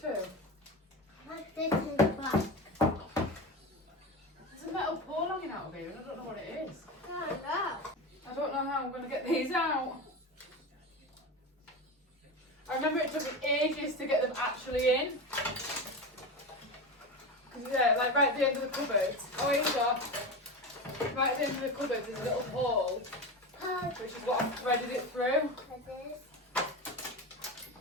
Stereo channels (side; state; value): both; normal; correlation 0.23